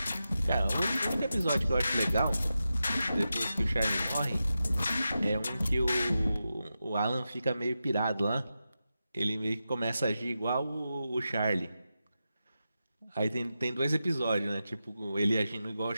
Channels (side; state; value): both; inverted; correlation -0.90